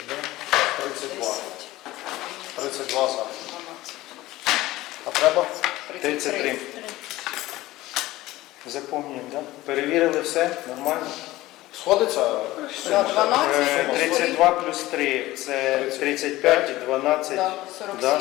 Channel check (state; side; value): quieter; right; 17.4 dB